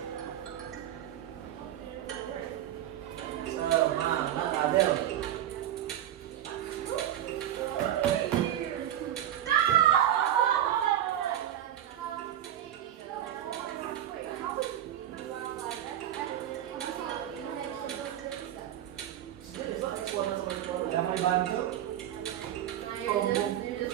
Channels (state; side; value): quieter; left; 11.4 dB